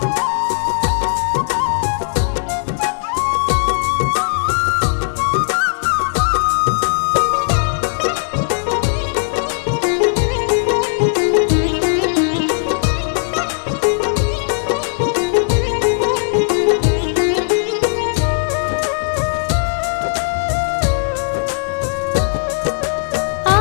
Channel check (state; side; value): silent; right; 68 dB below the other